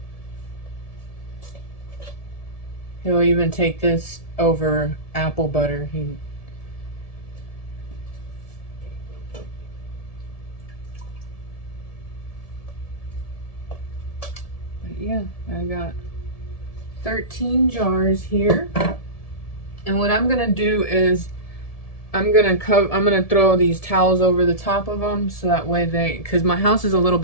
He'll even take this over apple butter. But yeah, I got 13 jars here. And what I'm gonna do is I'm gonna throw these towels over the top of them, so that way because my house is a little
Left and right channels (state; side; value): late; right; 1.7 ms